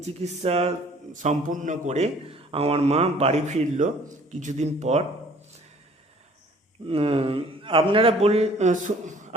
চিকিৎসা সম্পূর্ণ করে আমার মা বাড়ি ফিরল কিছুদিন পর। উম, আপনারা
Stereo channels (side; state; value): both; normal; correlation 0.54